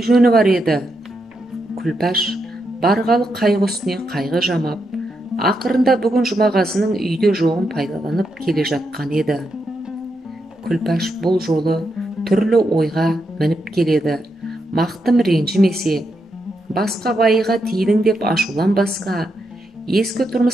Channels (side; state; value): both; normal; correlation 0.83